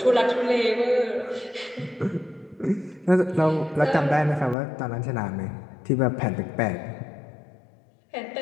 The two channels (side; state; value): right; drops out; at 4.5 s